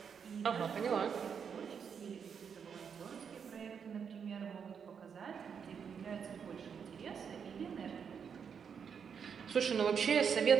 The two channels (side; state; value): left; quieter; 6.9 dB